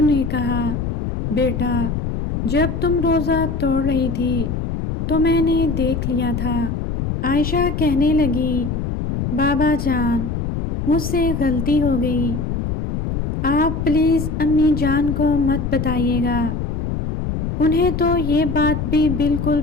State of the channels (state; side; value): noise; left; rumble, 3 dB below the sound